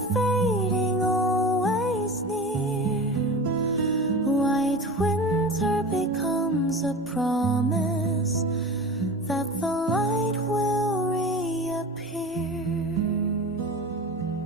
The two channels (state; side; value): normal; both; correlation 0.33